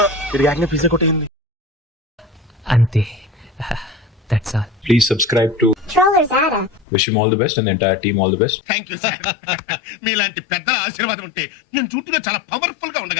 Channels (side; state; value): right; drops out; at 6.9 s